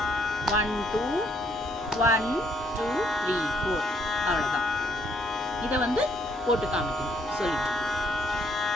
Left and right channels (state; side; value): normal; both; correlation 0.68